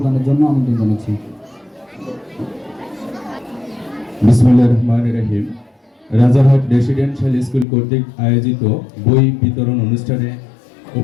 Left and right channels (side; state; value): right; drops out; at 7.7 s